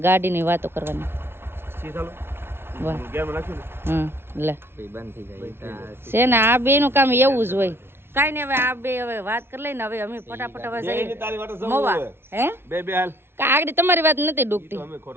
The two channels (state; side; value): late; left; 0.11 ms